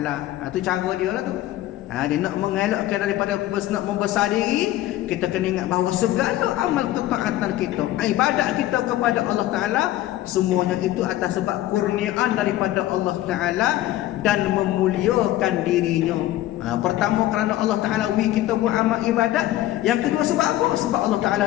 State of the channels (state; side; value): quieter; right; 14.8 dB